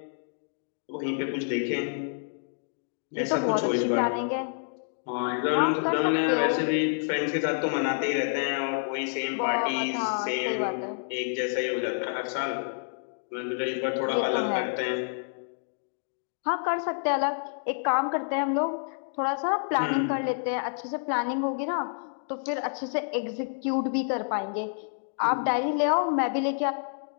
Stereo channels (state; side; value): silent; right; digital silence